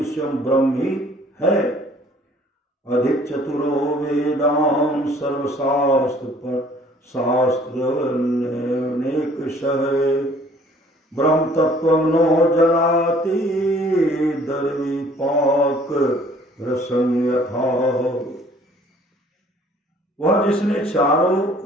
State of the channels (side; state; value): both; normal; correlation 0.56